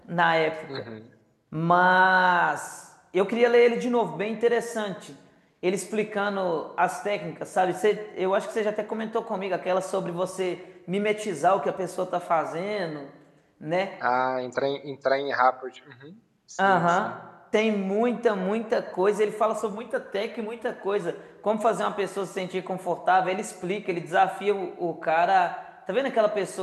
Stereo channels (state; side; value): identical; both; correlation 1.00